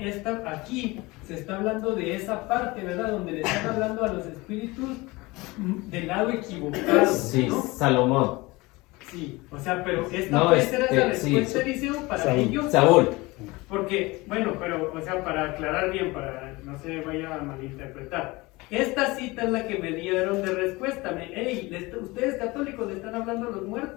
aquí. Se está hablando de esa parte, ¿verdad? Donde le están hablando a los espíritus del lado equivocado, Sí, ¿no? Salomón. Sí, o sea, pero esta No, puede ser la sí, respuesta, Eliseo, para ellos. Saúl. Porque, bueno, pero, o sea, para aclarar bien, para no se vaya a malinterpretar. Esta cita es la que me dieron de respuesta. Ustedes católicos le están hablando a los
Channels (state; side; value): quieter; right; 22.6 dB